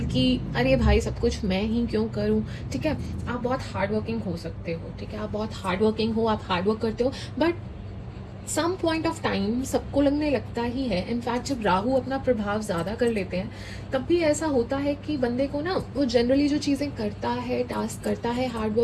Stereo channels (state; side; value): identical; both; correlation 1.00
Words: कि अरे भाई सब कुछ मैं ही क्यों करूं। ठीक है, आप बहुत हार्ड वर्किंग हो सकते हो, ठीक है, आप बहुत हार्ड वर्किंग हो, आप हार्ड वर्क करते हो, but some point of time सबको लगने लगता ही है। इनफैक्ट जब राहु अपना प्रभाव ज़्यादा कर लेते हैं, तब भी ऐसा होता है कि बंदे को ना, वो जनरली जो चीज़ें करता है, टास्क करता है, हार्ड